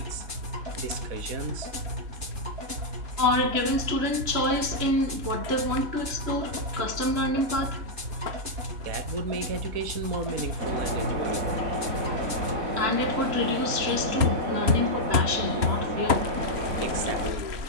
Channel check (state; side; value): late; left; 3.1 ms